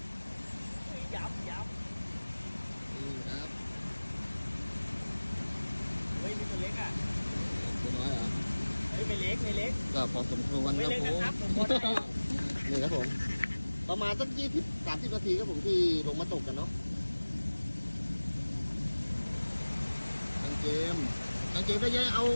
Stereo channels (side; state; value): both; inverted; correlation -1.00